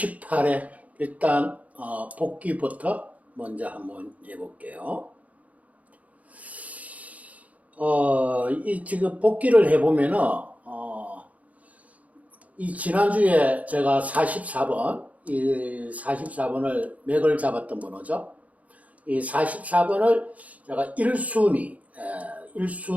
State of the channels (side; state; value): left; late; 0.070 ms